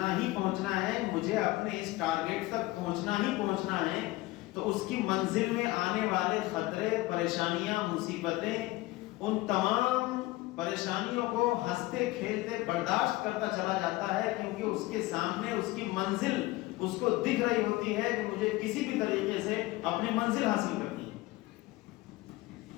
ہی پہنچنا ہے, مجھے اپنے اس ٹارگٹ تک پہنچنا ہی پہنچنا ہے, تو اس کی منزل میں آنے والے خطرے, پریشانیاں, مصیبتیں, ان تمام پریشانیوں کو ہنستے کھیلتے برداشت کرتا چلا جاتا ہے, کیونکہ اس کے سامنے اس کی منزل اس کو دکھ رہی ہوتی ہے کہ مجھے کسی بھی طریقے سے اپنی منزل حاصل کرنی ہے.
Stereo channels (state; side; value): quieter; right; 19.3 dB